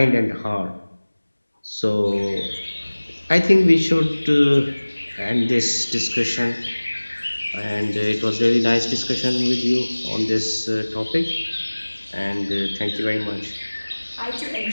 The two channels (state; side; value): inverted; both; correlation -1.00